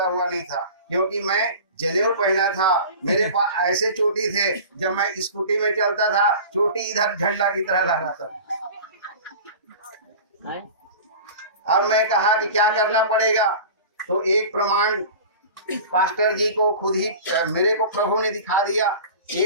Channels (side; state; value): both; inverted; correlation -0.37